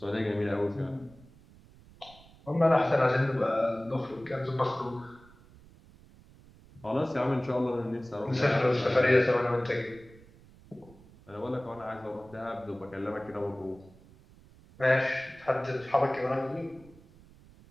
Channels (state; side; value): noise; right; rumble, 24 dB below the sound